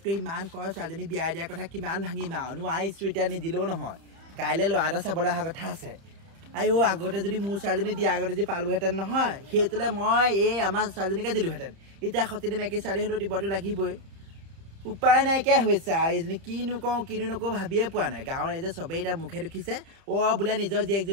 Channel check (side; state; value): left; late; 31 ms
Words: ইমান কয় ছোৱালীজনী বিয়া দিয়াৰ কথা কিমান ভাঙিম আৰু নোৱাৰিছোঁ এতিয়া নিদিলেও নহয় কাইলৈ ল'ৰা এটা চাবলৈ অহা কথা আছে আইও আগতে যদি মোৰ ছোৱালীজনী দিয়া আগতে যদি পালোহেঁতেন নহয় সেইটোলে মই এই আমাৰ ছোৱালীজনীকে দিলোহেঁতেন এতিয়া সতিনী মাইকী ছোৱালী হ'লেও দিবতো লাগিবই উপায় নাইকিয়া হৈছে আৰু এইজনী কিনো নকওঁ ভাবিয়ে পোৱা নাই গাঁৱৰ ৰাইজে চবেই এতিয়া মুখে দেখিছে বোলে নিজৰ